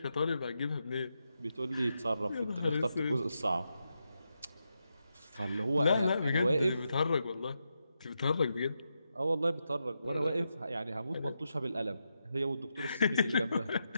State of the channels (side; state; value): both; inverted; correlation -0.86